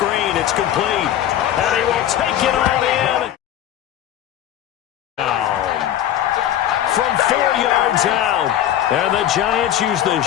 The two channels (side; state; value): right; quieter; 11.4 dB